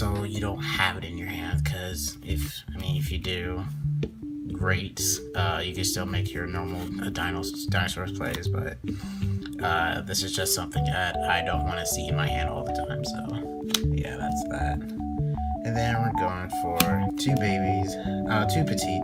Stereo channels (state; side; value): identical; both; correlation 1.00